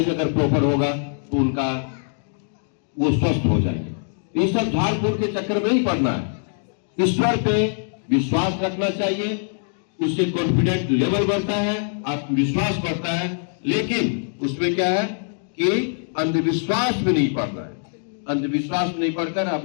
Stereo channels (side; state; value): right; silent; digital silence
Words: अगर प्रॉपर होगा तो उनका वो स्वस्थ हो जाएंगे। ये सब झाड़ फूक के चक्कर में नहीं पड़ना है, ईश्वर पे विश्वास रखना चाहिए, उससे कॉन्फिडेंस लेवल बढ़ता है, आत्मविश्वास बढ़ता है। लेकिन उसमें क्या है कि अंधविश्वास में नहीं पड़ना है। अंधविश्वास में नहीं पढ़कर